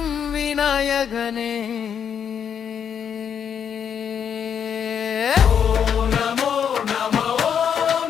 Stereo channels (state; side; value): quieter; right; 8.0 dB